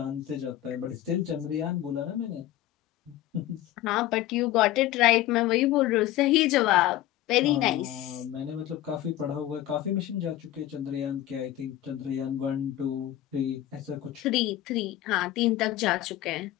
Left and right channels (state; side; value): quieter; right; 13.9 dB